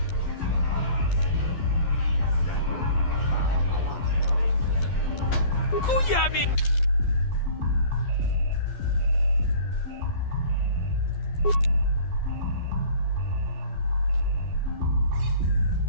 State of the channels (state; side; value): late; right; 12 ms